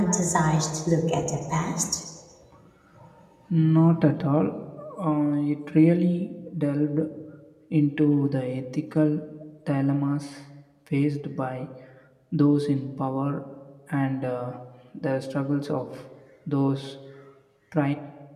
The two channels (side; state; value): both; identical; correlation 1.00